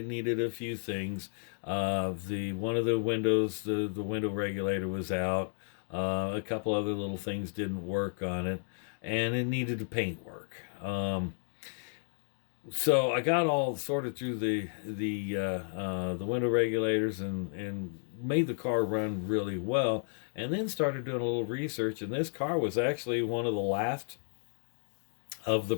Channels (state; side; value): silent; right; digital silence